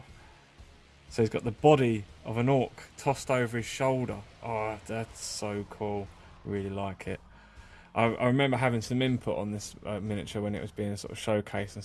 So he's got the body of an orc tossed over his shoulder. Oh, that's so cool. Really like it. I remember having some input on this miniature when it was being sort of showcased and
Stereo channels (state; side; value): identical; both; correlation 1.00